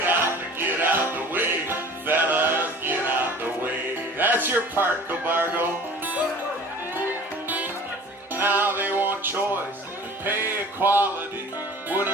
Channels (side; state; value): both; normal; correlation 0.44